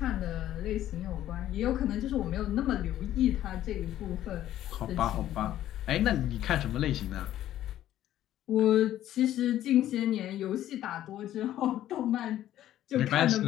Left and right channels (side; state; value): right; quieter; 12.7 dB